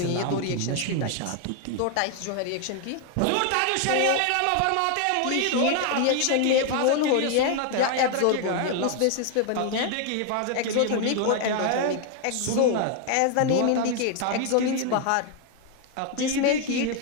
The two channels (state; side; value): different; both; correlation 0.00